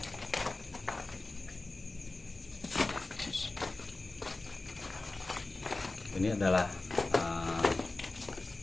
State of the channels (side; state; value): right; quieter; 3.2 dB